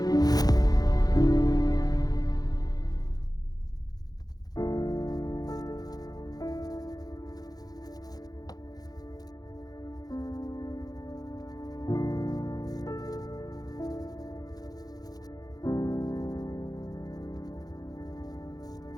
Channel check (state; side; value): late; right; 0.19 ms